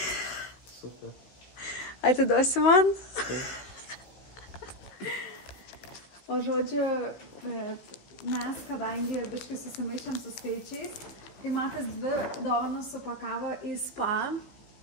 Super. Atiduosi man? O žodžiu, mes, kadangi biškai susimaišėm su skaičiais, tai Matas 2 dovanas supakavo į spa,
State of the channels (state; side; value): late; right; 16 ms